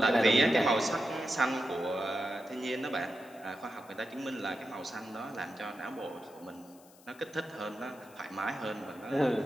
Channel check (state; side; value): noise; left; hiss, 25 dB below the sound